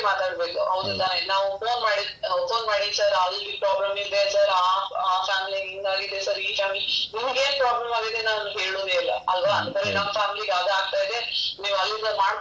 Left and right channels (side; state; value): both; identical; correlation 1.00